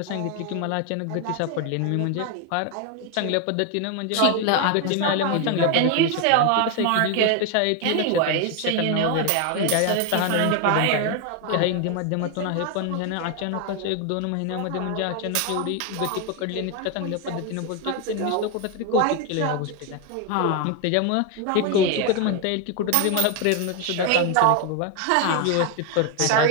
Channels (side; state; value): both; different; correlation 0.01